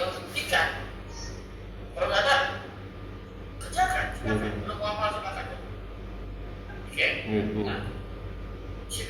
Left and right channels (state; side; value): identical; both; correlation 1.00